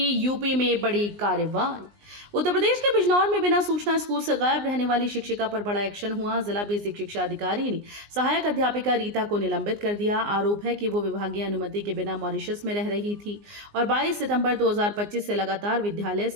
यूपी में बड़ी कार्रवाई। उत्तर प्रदेश के बिजनौर में बिना सूचना स्कूल से गायब रहने वाली शिक्षिका पर बड़ा एक्शन हुआ। जिला बेसिक शिक्षा अधिकारी ने सहायक अध्यापिका रीता को निलंबित कर दिया। आरोप है कि वो विभागीय अनुमति के बिना मॉरिशस में रह रही थी और 22 सितंबर 2025 से लगातार विद्यालय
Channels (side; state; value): left; late; 19 ms